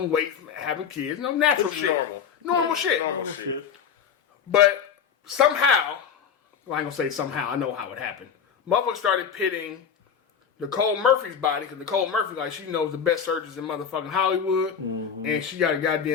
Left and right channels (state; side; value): quieter; right; 7.3 dB